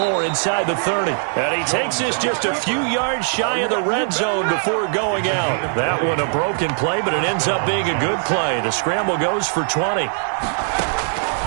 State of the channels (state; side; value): silent; left; digital silence